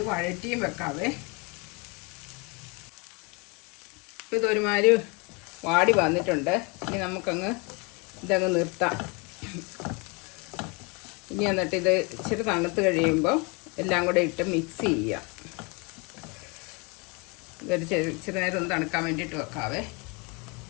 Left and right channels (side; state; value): right; quieter; 30.1 dB